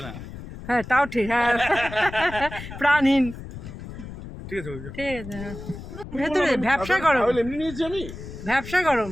না হ্যাঁ তাও ঠিক হ্যাঁ প্রাণহীন ঠিক আছে ঠিক আছে হ্যাঁ। ভেতরে ব্যবসা গরম এমনি নিয়েছি আমি ব্যবসা গরম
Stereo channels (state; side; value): noise; left; rumble, 12 dB below the sound